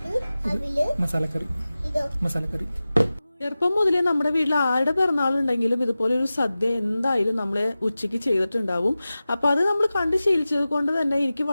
മസാലക്കറി. ചെറുപ്പം മുതലേ നമ്മുടെ വീട്ടിൽ ആരുടെ പിറന്നാളുണ്ടെങ്കിലും ഇതുപോലെ ഒരു സദ്യ എന്തായാലും നമ്മളെ ഉച്ചയ്ക്ക് ചെയ്തിട്ടുണ്ടാവും. അപ്പൊ അത് നമ്മൾ കണ്ട് ശീലിച്ചത് കൊണ്ട് തന്നെ എനിക്ക്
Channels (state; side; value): inverted; both; correlation -0.96